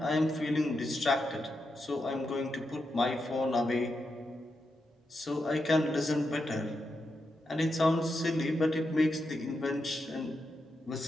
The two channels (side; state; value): both; normal; correlation 0.86